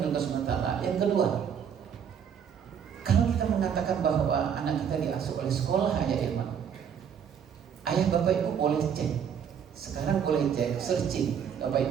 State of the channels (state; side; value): quieter; left; 7.9 dB